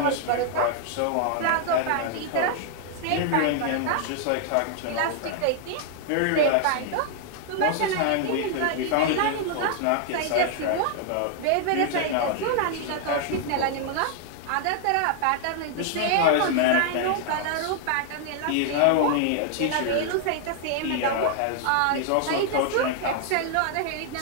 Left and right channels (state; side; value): different; both; correlation 0.00